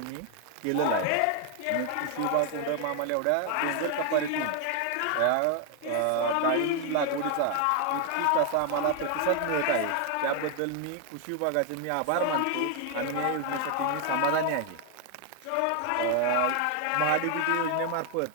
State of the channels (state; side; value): different; both; correlation 0.01